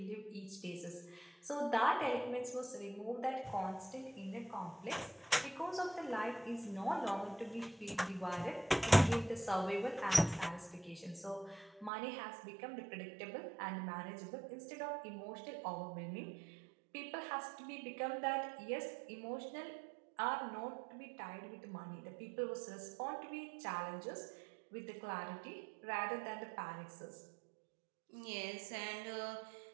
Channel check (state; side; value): drops out; left; at 11.9 s